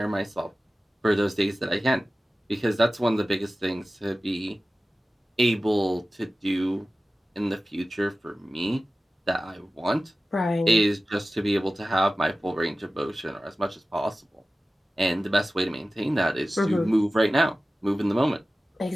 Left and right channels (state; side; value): normal; both; correlation 0.95